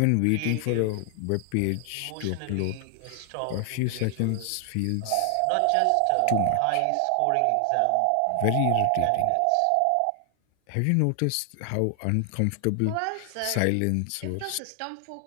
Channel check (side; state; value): both; different; correlation 0.00